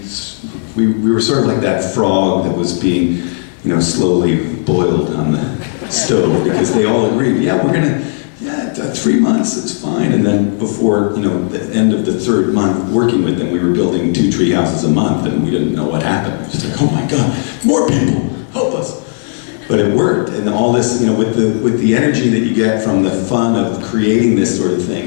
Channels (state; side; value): silent; right; digital silence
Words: were sort of like that frog that was being, slowly boiled on the stove, because they all agreed, yeah, 3 months, it's fine. And then before, the end of the 3rd month working with them, we were building 2 tree houses a month, and we didn't know what happened. It was just like, oh my God, more people, help us. But it worked, and all this, with the energy that you get from the fun of creating this sort of